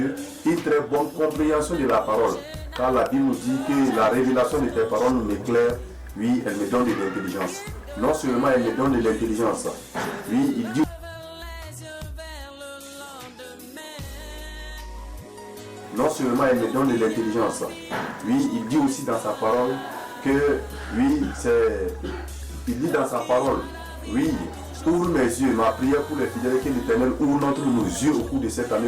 une très bonne compréhension de la parole. Car la Bible nous dit que la révélation de tes paroles m'éclaire, oui, elle me donne de l'intelligence. Non seulement elle me donne de l'intelligence, oui, il dit. Non seulement elle me donne de l'intelligence, oui, il dit aussi dans sa parole que, oui, il dit dans sa parole, oui, ouvre mes yeux, ma prière pour les fidèles, que l'Éternel ouvre nos yeux au cours de cette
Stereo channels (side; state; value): both; identical; correlation 1.00